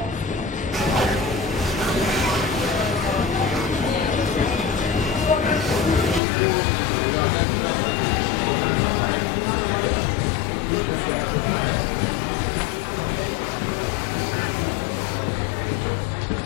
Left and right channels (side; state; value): right; drops out; at 6.2 s